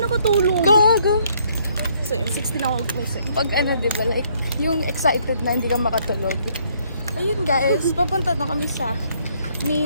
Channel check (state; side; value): inverted; both; correlation -0.67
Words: Go! So yun, 16 ako gumising. Pag diba, like, yung excited na hindi ka makatulog. Ayun guys, papunta na kami sa